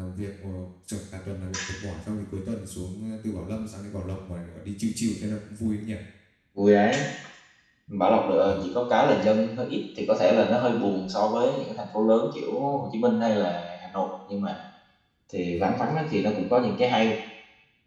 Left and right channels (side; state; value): both; identical; correlation 1.00